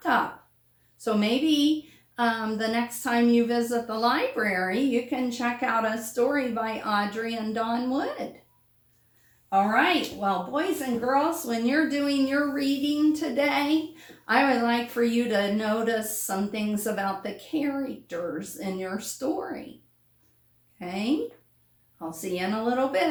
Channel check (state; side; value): identical; both; correlation 1.00